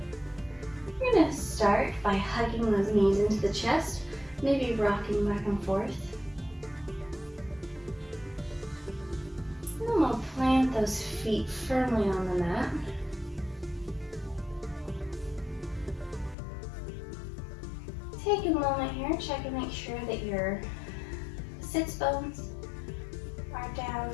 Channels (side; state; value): right; drops out; at 16.4 s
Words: We're gonna start by hugging those knees into the chest, maybe rocking back and forth. And then we'll plant those feet firmly on the mat. Take a moment here, check and make sure that your sits bones are down,